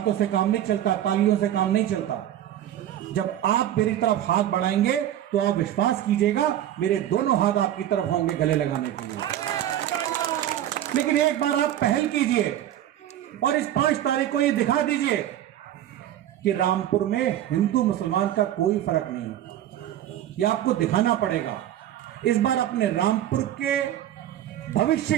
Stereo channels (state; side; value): quieter; left; 12.0 dB